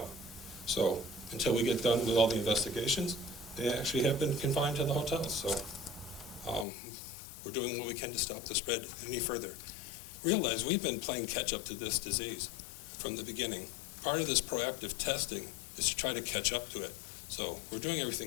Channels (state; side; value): drops out; right; at 6.7 s